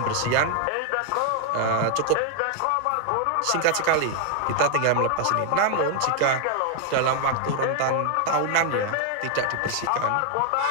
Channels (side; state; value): both; different; correlation 0.00